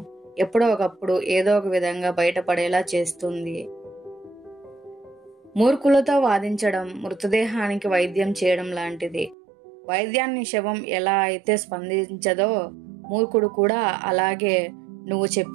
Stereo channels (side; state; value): left; drops out; at 9.3 s